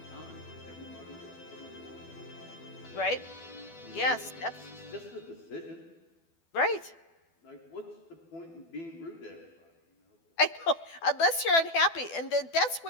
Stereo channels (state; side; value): late; right; 12 ms